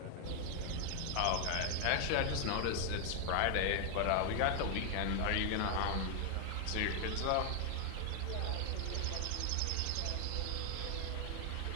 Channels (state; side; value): different; both; correlation 0.00